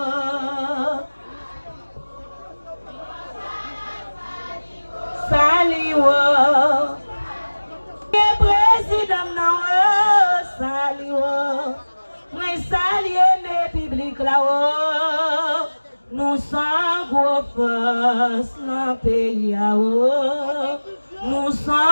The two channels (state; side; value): inverted; both; correlation -1.00